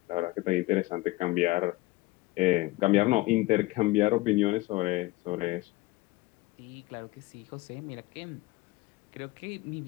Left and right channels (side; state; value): right; quieter; 20.3 dB